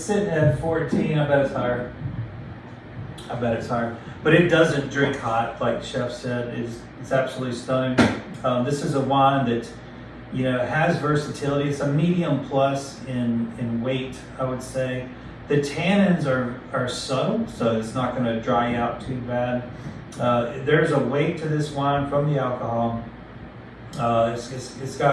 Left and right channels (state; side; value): identical; both; correlation 1.00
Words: at 14. I bet it's higher. But it doesn't drink hot, like the chef said. It's absolutely stunning. This is a wine that has versatility. It's a medium plus in weight, I would say. The tannins are subtle, so it's not going to dry you out too bad. There's a weight to this wine from the alcohol. It's